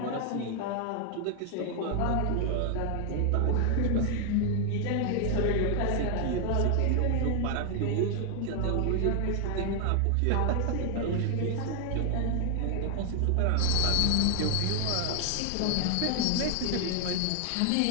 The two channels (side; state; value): both; different; correlation 0.00